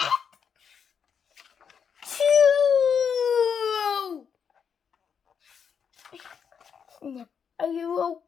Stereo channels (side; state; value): right; quieter; 7.0 dB